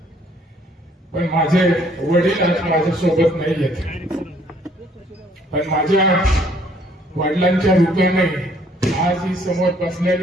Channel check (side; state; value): both; normal; correlation 0.62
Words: पण माझे वडील आज माझ्यासोबत नाही आहेत. पण माझ्या वडिलांच्या रूपाने आज ही समोर